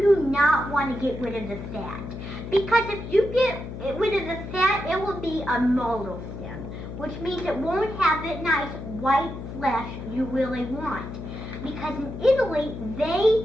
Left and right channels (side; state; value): left; noise; hum, 9 dB below the sound